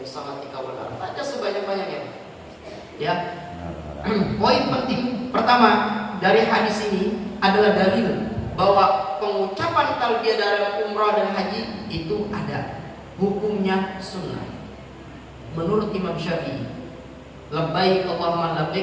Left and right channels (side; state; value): both; identical; correlation 1.00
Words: sakhatika wal nar. Aja sebanyak-banyaknya. Ya. Poin penting pertama dari hadis ini adalah dalil bahwa pengucapan talbiyah dalam umrah dan haji itu ada hukumnya sunnah. Menurut Imam Syafi'i, labbaik Allahumma